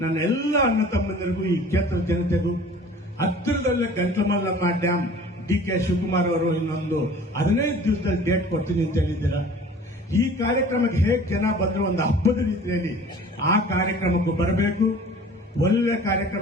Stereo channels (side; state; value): both; normal; correlation 0.46